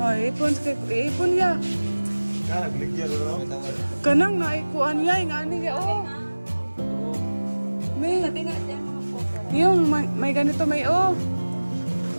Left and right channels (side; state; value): both; inverted; correlation -1.00